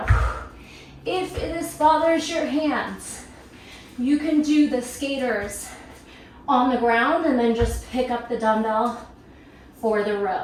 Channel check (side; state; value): both; identical; correlation 1.00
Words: If this bothers your hands, you can do the skaters on the ground and then just pick up the dumbbell for the